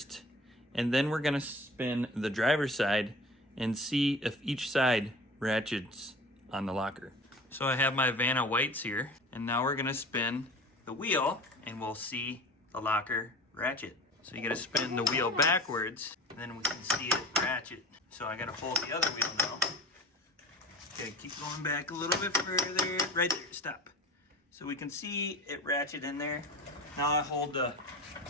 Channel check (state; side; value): normal; both; correlation 0.38